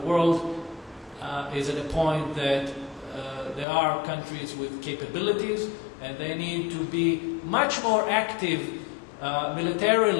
world is at a point that there are countries with capabilities, and they need to be much more active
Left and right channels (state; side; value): drops out; right; at 3.7 s